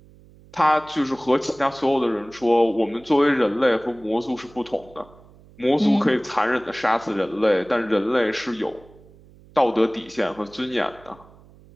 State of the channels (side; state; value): right; noise; hum, 25 dB below the sound